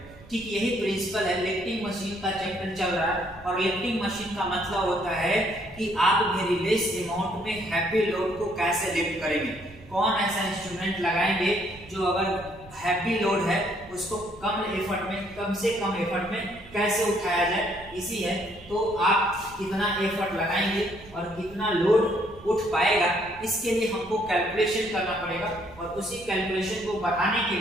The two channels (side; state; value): right; noise; rumble, 21 dB below the sound